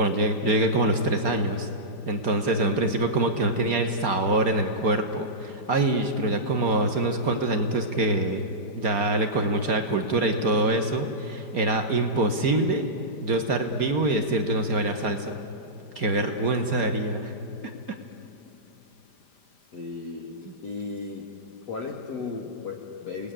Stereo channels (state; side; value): late; right; 5.0 ms